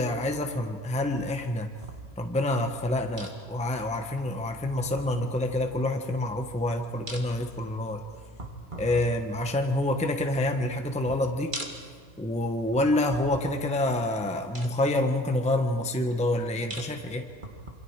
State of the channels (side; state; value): both; normal; correlation 0.55